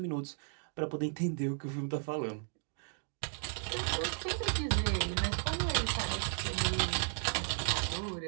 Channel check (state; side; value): silent; left; 55 dB below the other